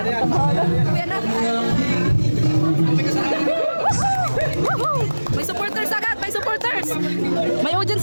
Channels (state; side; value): inverted; both; correlation -1.00